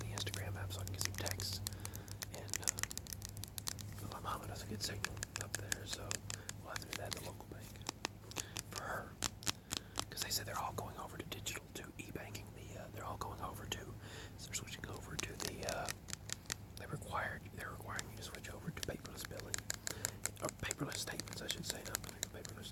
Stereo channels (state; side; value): identical; both; correlation 1.00